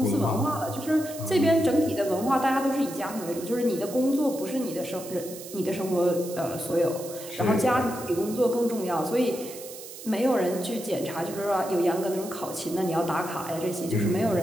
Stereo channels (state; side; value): noise; right; hiss, 13 dB below the sound